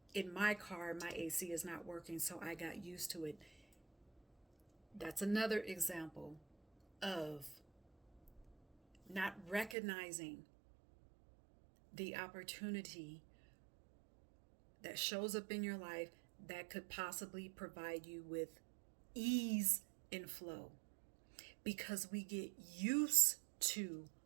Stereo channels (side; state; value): left; drops out; at 9.8 s